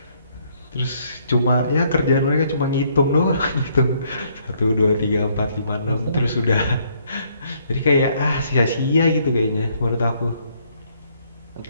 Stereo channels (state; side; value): inverted; both; correlation -0.68